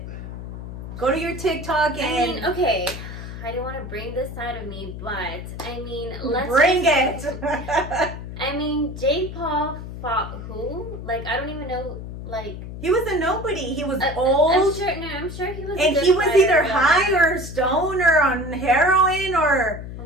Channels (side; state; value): left; noise; hum, 9 dB below the sound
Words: Go to your TikTok and... I mean, okay, I don't want to bring this side of me, but, I mean, let's... Bring it! I mean, Jake Paul fought who? Like, I don't even know, like... He was a nobody. He was old. I'm sure he was. And he was either high or stoned or on heroin or...